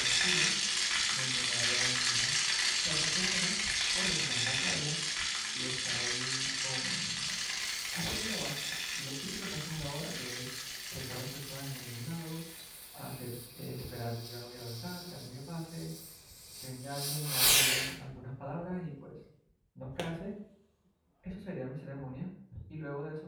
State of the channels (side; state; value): both; identical; correlation 1.00